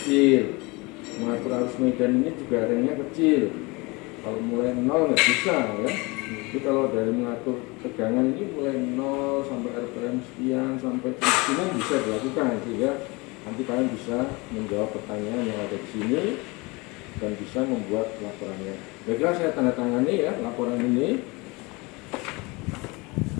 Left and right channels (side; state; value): right; quieter; 25.8 dB